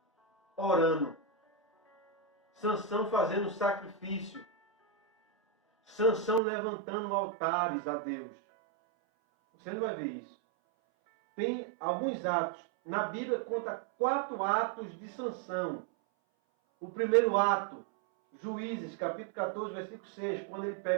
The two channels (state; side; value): drops out; left; at 6.4 s